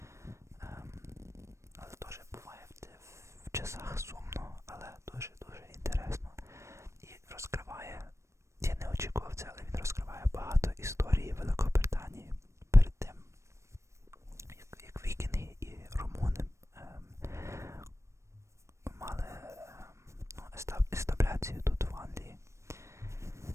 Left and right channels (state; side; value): late; left; 0.14 ms